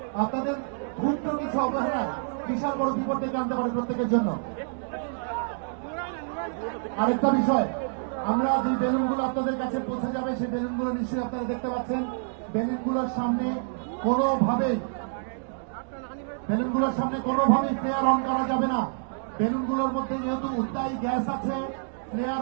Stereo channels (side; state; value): left; silent; digital silence